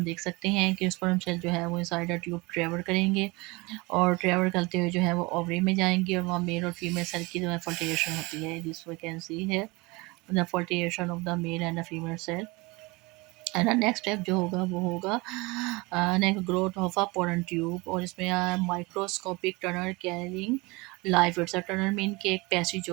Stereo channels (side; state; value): left; quieter; 24.8 dB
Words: देख सकते हैं कि स्पर्म सेल जो है वो इनसाइड द ट्यूब ट्रेवल करेंगे और ट्रेवल करते हुए जो है वो ओवरी में जाएंगे और वहाँ मेल और फीमेल सेल की जो है फर्टिलेशन होती है, दिस वी कैन सी है the fertilization of the male and the female cell. And next step जो होगा वो होगा next growth of a pollen tube और इसमें microscopic tunnel carrying life it's a tunnel mean के एक पैसेज